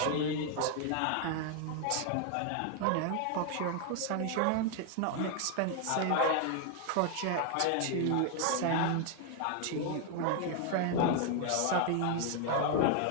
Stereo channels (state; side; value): different; both; correlation 0.00